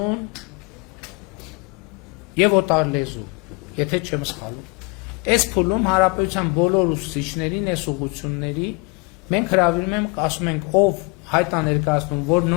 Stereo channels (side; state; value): right; quieter; 29.6 dB